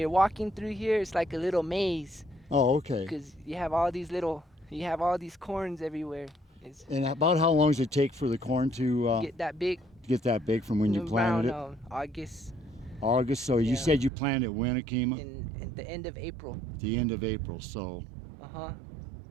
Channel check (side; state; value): left; drops out; at 14.1 s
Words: walking through here, it's like a little maze Oh, okay. because you have all these corns everywhere. It's And about how long does it take for the corn to get that big get that big from when you planted around it? August August. So you Yeah. said you planted when, Akima? in the end of April. The end of April. So Uh-huh.